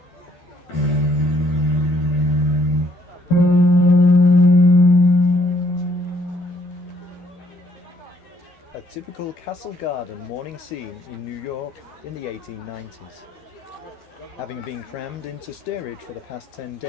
A typical castle garden morning scene in New York in the 1890s. Having been crammed into steerage for the past 10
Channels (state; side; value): late; right; 12 ms